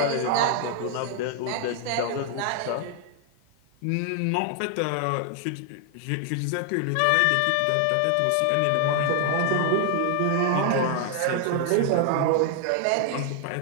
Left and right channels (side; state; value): both; different; correlation 0.00